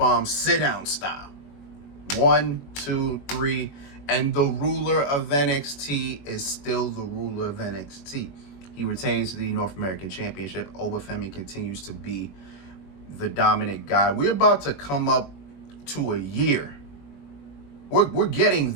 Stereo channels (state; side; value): late; right; 21 ms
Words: sit-down style. 1, 2, 3, and the ruler of NXT is still the ruler of NXT. He retains the North American Championship. Oba Femi continues to be the dominant guy. We're about to come up to a year. We're getting